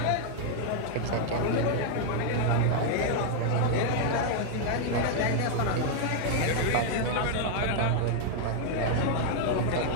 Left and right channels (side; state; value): both; different; correlation 0.00